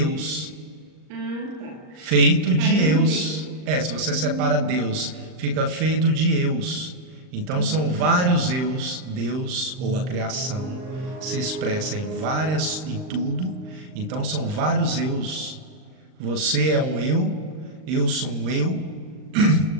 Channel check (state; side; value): late; left; 39 ms